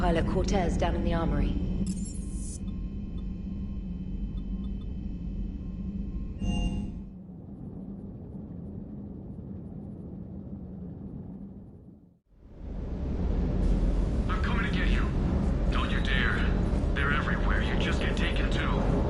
Cortez down in the armory. I'm coming to get you. Don't you dare. They're everywhere. You just get taken too.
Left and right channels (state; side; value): identical; both; correlation 1.00